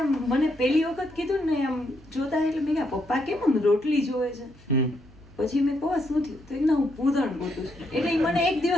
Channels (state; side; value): noise; right; hum, 23 dB below the sound